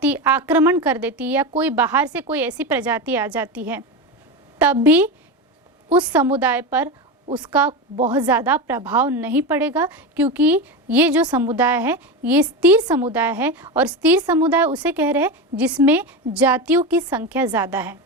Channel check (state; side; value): normal; both; correlation 0.19